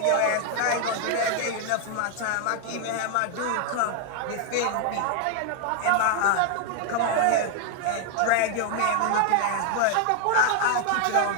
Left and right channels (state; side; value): different; both; correlation 0.00